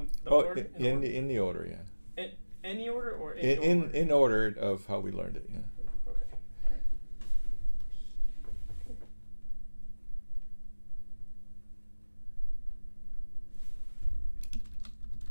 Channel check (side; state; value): both; inverted; correlation -1.00